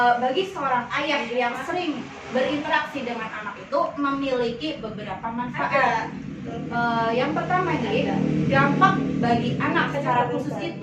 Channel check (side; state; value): both; identical; correlation 1.00